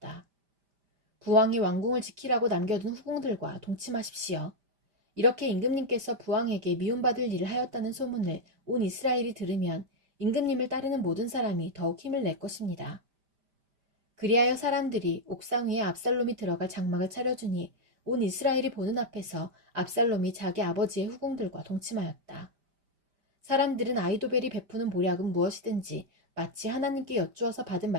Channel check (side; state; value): left; late; 5.0 ms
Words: 부왕이 왕궁을 지키라고 남겨둔 후궁들과 동침하십시오. 이렇게 임금님께서 부왕에게 미움받을 일을 하였다는 소문을 온 이스라엘이 들으면 임금님을 따르는 모든 사람이 더욱 힘을 낼 것입니다. 그리하여 사람들이 옥상 위에 압살롬이 들어갈 장막을 차려주니 온 이스라엘이 보는 앞에서 압살롬이 자기 아버지의 후궁들과 동침하였다. 사람들은 아히도벨이 베푸는 모략은 무엇이든지 마치 하나님께 여쭈어서 받은